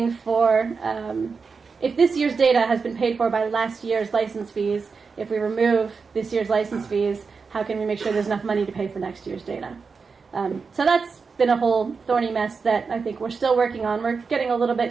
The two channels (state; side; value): quieter; left; 5.0 dB